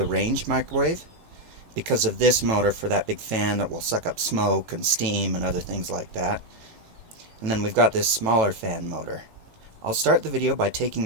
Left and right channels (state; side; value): late; left; 18 ms